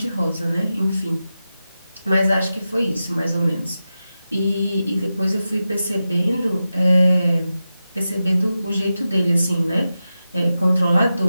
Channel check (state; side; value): inverted; both; correlation -0.92